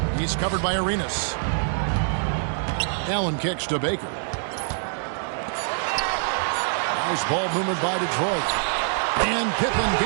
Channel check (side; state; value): left; silent; 62 dB below the other